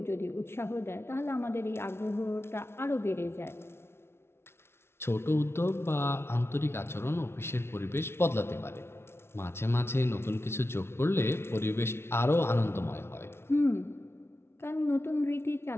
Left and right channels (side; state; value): right; late; 0.12 ms